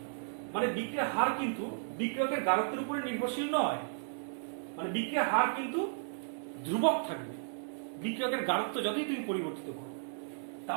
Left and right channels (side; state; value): left; silent; digital silence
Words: মানে বিক্রিয়ার হার কিন্তু বিক্রিয়কের গারত্বের উপরে নির্ভরশীল নয়, মানে বিক্রিয়ার হার কিন্তু ধ্রুবক থাকবে বিক্রিয়কের গারত্ব যতই তুমি পরিবর্তিত করো।